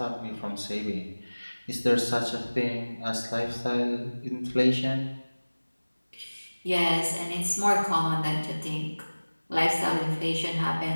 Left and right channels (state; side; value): inverted; both; correlation -1.00